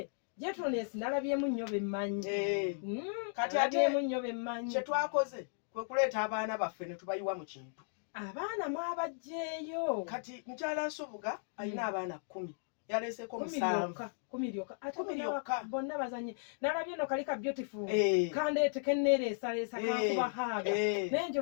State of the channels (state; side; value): silent; right; digital silence